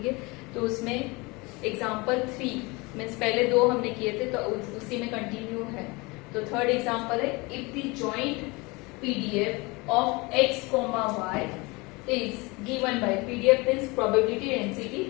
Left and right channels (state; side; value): quieter; right; 25.4 dB